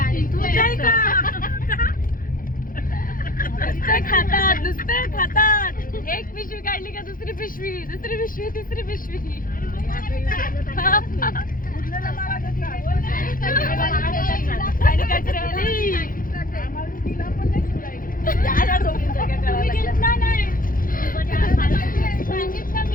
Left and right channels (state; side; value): late; right; 0.40 ms